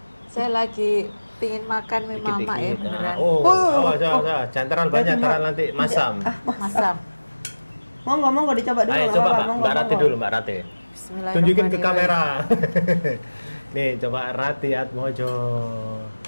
Saya lagi pingin makan mie mama ya Dikit-dikit. beneran. Oh, awas. Jangan terlalu banyak, terlalu nanti masam. Masam. Monggo dicoba dulu. Ayo nggak coba apa-apa, Mbak, monggo, Mbak Rati monggo. dulu, Mbak Rati. Bismillahirrahmanirrahim. Tunjukin ke kamera. Nih, coba Rati Atmojo.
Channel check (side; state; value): both; inverted; correlation -1.00